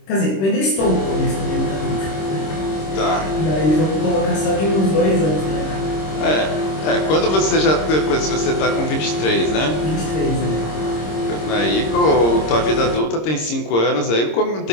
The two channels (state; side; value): late; right; 26 ms